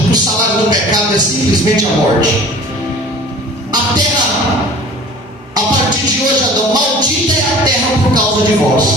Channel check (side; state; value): both; normal; correlation 0.44